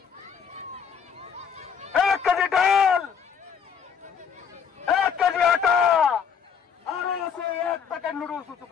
1 কেজি ডাল, 1 কেজি আটা, আরো আছে 1 প্যাকেট নুডলস। উঁচু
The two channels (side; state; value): right; quieter; 7.1 dB